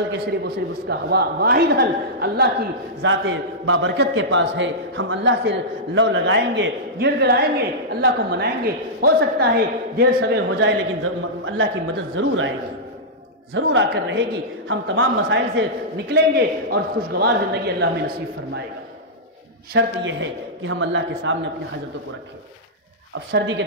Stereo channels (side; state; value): both; normal; correlation -0.12